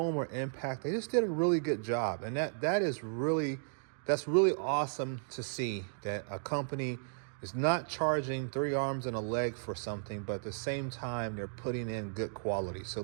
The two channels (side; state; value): left; silent; digital silence